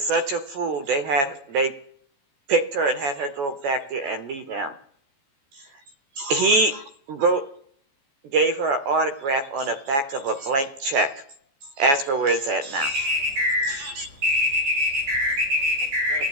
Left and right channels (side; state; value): left; late; 14 ms